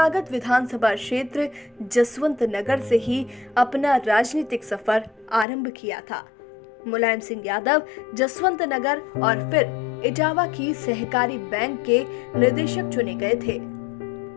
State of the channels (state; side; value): drops out; right; at 5.5 s